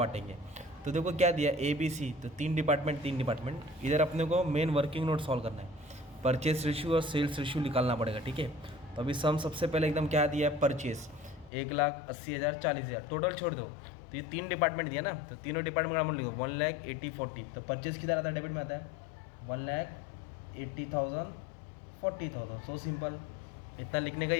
तो देखो क्या दिया, ABC, तो 3 डिपार्टमेंट। इधर अपने को मेन वर्किंग नोट सॉल्व करना है। परचेस रेशियो और सेल्स रेशियो निकालना पड़ेगा, ठीक है। तो अभी सम सबसे पहले एकदम क्या दिया है, परचेस 1,80,000 40,000, टोटल छोड़ दो। तो ये 3 डिपार्टमेंट दिया ना, तो तीनों डिपार्टमेंट का अमाउंट लिखो 1,80,40। तो परचेस किधर आता है, डेबिट में आता है। 1,80,000 40,000, सो सिंपल। इतना लिखने का ही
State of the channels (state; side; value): drops out; right; at 11.5 s